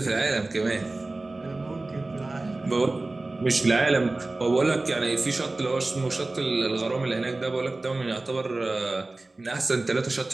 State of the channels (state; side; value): quieter; left; 3.1 dB